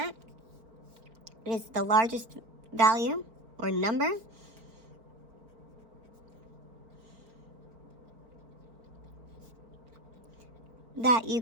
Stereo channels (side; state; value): left; late; 4.4 ms